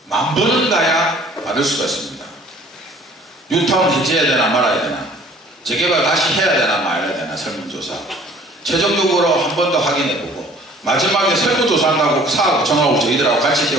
10,000번은 가야 받을 수가 있습니다. 뉴타운 해제해야 되나 말아야 되나, 재개발 다시 해야 되나 말아야 되나 설문조사 최종적으로 한 번 더 확인해보고 마지막에 설문조사한다고 사업 구청하고 저희들하고 같이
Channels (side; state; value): both; normal; correlation 0.53